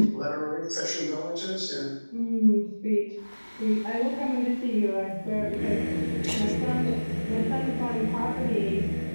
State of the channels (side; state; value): both; inverted; correlation -1.00